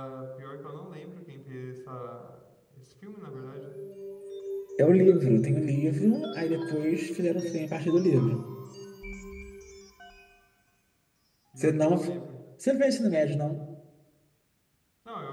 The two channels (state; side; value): identical; both; correlation 1.00